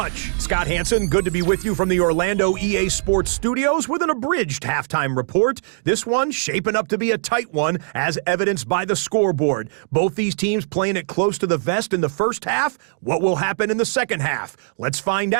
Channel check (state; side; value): silent; left; digital silence